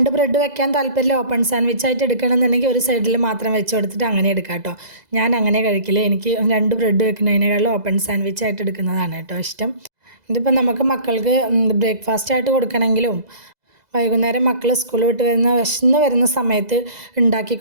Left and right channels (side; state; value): left; late; 2.0 ms